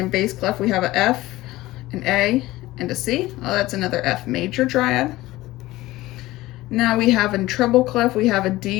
bass clef, we have a F, an A, and a C. Oh, that's another F major triad. Now we have in treble clef, we have a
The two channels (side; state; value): right; quieter; 17.8 dB